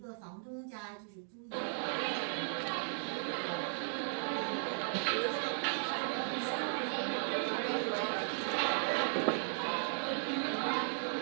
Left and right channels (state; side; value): silent; left; digital silence